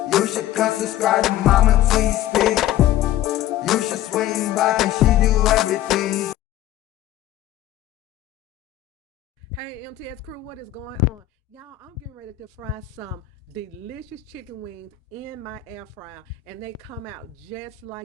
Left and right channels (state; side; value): quieter; right; 13.1 dB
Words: You should come subscribe to Mama T Speak. You should swing by, and she do everything. Hey MTS crew, what is going on? Y'all, I'm getting ready to fry some delicious chicken wings in my air fryer, and they come out just